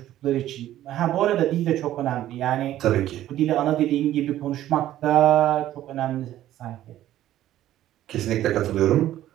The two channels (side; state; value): left; quieter; 13.2 dB